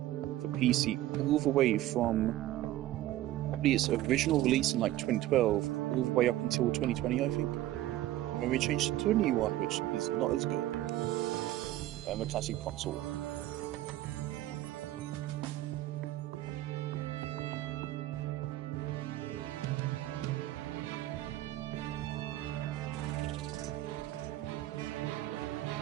for PC all the way from probably its original release in like 2012 all the way up until 2020, I think. And then we changed it to a new one, which is not as good. The classic console.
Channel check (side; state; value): left; quieter; 14.7 dB